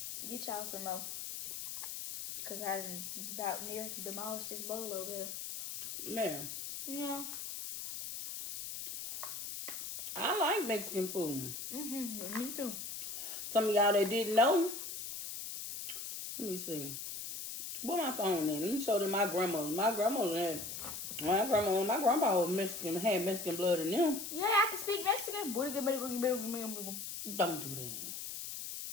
Get y'all some more. Because I done about near demolished this bowl over here. Man, Yeah. I like Mexican food. Me too. Some of y'all that didn't know. Let me see. Where my phone in? Let me show them my grandma. My grandpa was Mexican, had Mexican blood in them. Yeah, I can speak Mexican. Don't do that.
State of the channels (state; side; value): noise; left; hiss, 7 dB below the sound